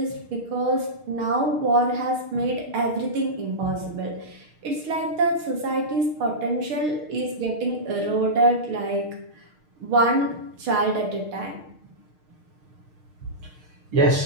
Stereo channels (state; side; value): late; left; 6.5 ms